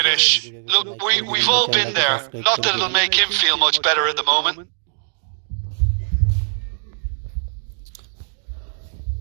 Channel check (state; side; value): silent; left; digital silence